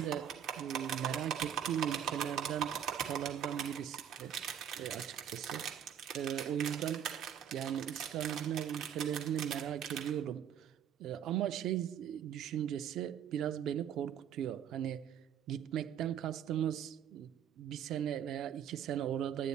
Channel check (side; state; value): left; quieter; 9.3 dB